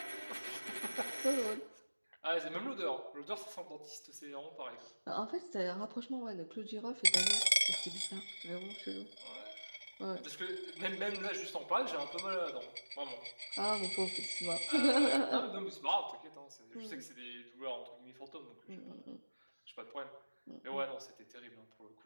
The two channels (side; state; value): both; inverted; correlation -1.00